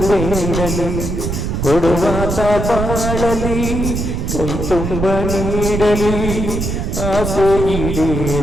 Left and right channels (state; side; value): noise; right; rumble, 2 dB below the sound